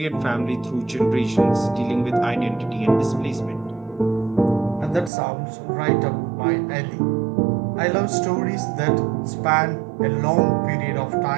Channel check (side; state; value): left; drops out; at 5.1 s